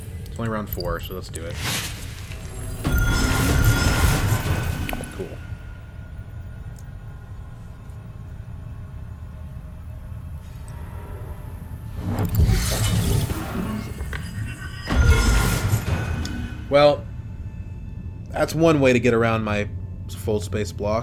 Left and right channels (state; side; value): identical; both; correlation 1.00